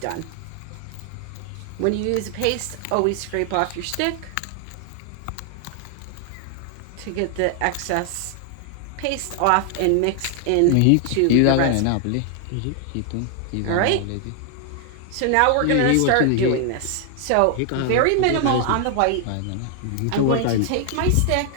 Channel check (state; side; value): different; both; correlation 0.00